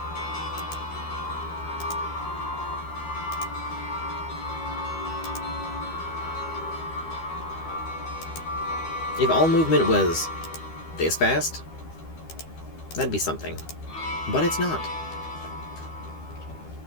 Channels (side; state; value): right; late; 13 ms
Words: If all movement was this fast, that'd be something. But it's not.